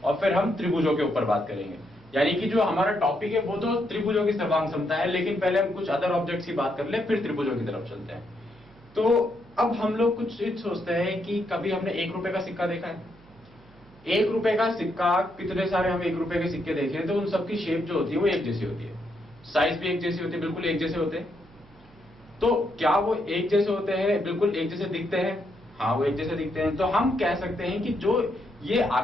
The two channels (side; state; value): right; noise; hum, 26 dB below the sound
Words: और फिर हम त्रिभुजों के ऊपर बात करेंगे। यानी कि जो हमारा टॉपिक है वो तो त्रिभुजों की सर्वांग समता है, लेकिन पहले हम कुछ अदर ऑब्जेक्ट्स की बात कर ले, फिर त्रिभुजों की तरफ चलते हैं। तो अब हम लोग कुछ चीज सोचते हैं कि कभी हमने 1 रुपए का सिक्का देखा है। 1 रुपए का सिक्का, कितने सारे हम 1 रुपए के सिक्के देखे तो उन सबकी शेप जो होती है वो एक जैसी होती है, साइज भी एक जैसी होती है, बिल्कुल एक जैसे होते हैं। तो क्या वो एक जैसे होते हैं, बिल्कुल एक जैसे दिखते हैं? हाँ, वो एक जैसे दिखते हैं। तो हम कह सकते हैं कि जो ये